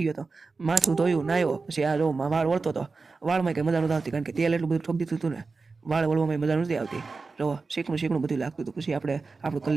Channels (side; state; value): left; quieter; 4.2 dB